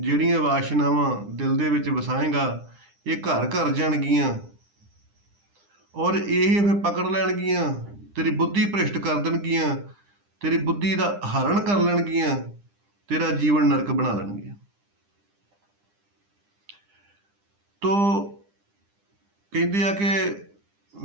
ਵਾਸ਼ਨਾਵਾਂ ਦਿਲ ਦੇ ਵਿੱਚ ਵਸਾਏਗਾ, ਇਹ ਘਰ ਘਰ ਜਾਣਗੀਆਂ ਔਰ ਇਹ ਫਿਰ ਪਕੜ ਲੈਣਗੀਆਂ, ਤੇਰੀ ਬੁੱਧੀ ਭ੍ਰਿਸ਼ਟ ਕਰ ਦੇਣਗੀਆਂ, ਤੇਰੀ ਬੁੱਧੀ ਦਾ ਹਰਨ ਕਰ ਲੈਣਗੀਆਂ, ਤੇਰਾ ਜੀਵਨ ਨਰਕ ਬਣਾ ਲੈਣਗੀਆਂ। ਤੋ ਕਹਿੰਦੇ ਆ ਕਿ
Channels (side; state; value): left; late; 9.9 ms